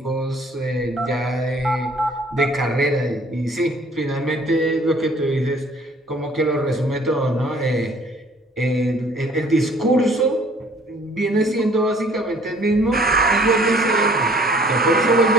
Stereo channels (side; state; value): both; normal; correlation 0.56